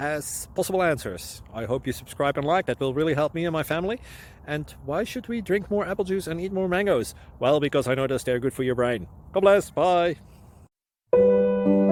possible answers. I hope you subscribe and like, that will really help me and my family. And why should we drink more apple juice and eat more mangoes? Well, because I noticed they're good for your brain. God bless, bye.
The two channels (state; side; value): identical; both; correlation 1.00